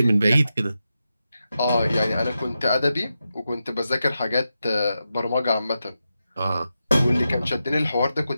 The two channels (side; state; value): both; inverted; correlation -0.89